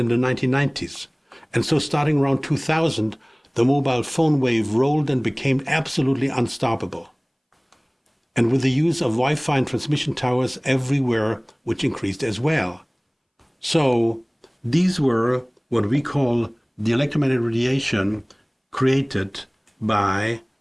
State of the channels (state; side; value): identical; both; correlation 1.00